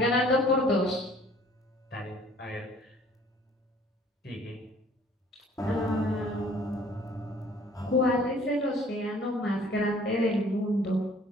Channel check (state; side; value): normal; both; correlation 0.55